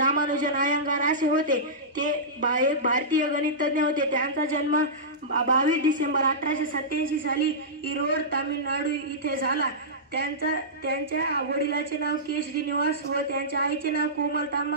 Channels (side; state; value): both; normal; correlation -0.16